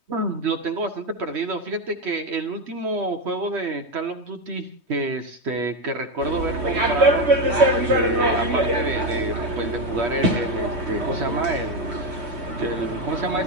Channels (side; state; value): left; late; 3.2 ms